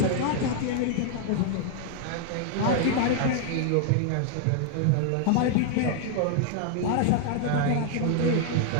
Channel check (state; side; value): different; both; correlation 0.00